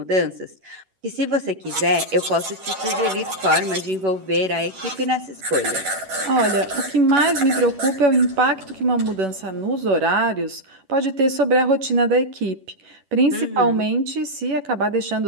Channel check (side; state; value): left; late; 11 ms